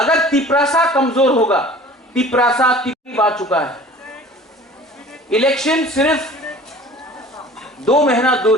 तिपरासा कमजोर होगा, तिपरासा तिपरी आ चुका है, इलेक्शन सिर्फ 2 महीना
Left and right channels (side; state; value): both; normal; correlation 0.45